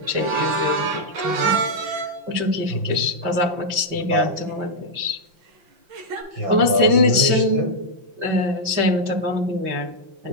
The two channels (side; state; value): left; late; 5.8 ms